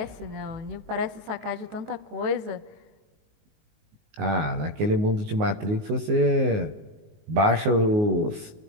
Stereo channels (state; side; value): late; left; 19 ms